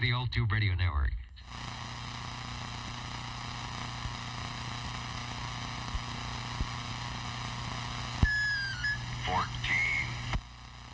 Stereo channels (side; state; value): both; identical; correlation 1.00